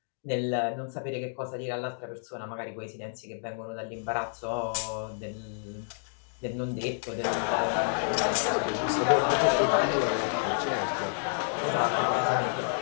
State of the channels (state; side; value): silent; right; digital silence